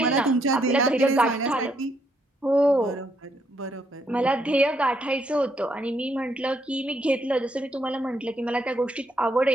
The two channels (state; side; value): normal; both; correlation 0.74